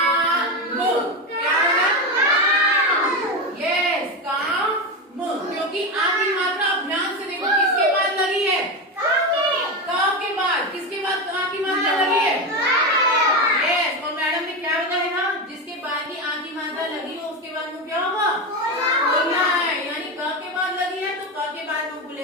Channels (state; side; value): normal; both; correlation 0.16